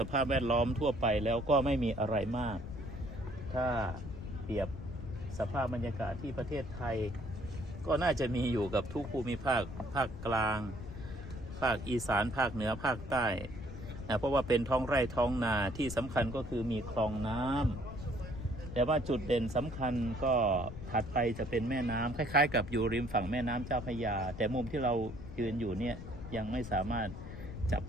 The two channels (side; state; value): left; noise; rumble, 11 dB below the sound